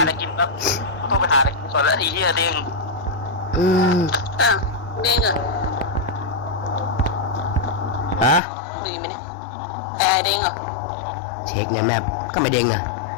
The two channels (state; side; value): drops out; right; at 8.4 s